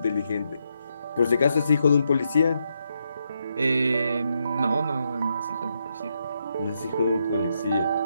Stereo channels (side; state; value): both; inverted; correlation -0.80